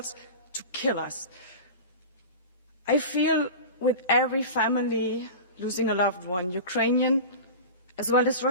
to kill us. I feel with every family losing a loved one, Ukrainian as well as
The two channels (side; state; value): both; inverted; correlation -0.31